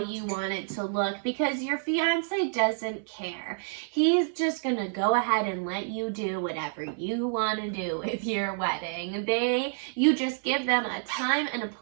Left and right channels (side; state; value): left; silent; 59 dB below the other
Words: want it to look, because your fiance doesn't care. He's just gonna go ahead and let you do whatever you want to do with your wedding. You just give them a time and a